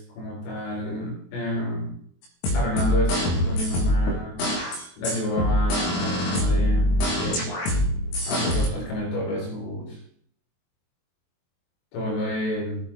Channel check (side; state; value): right; late; 23 ms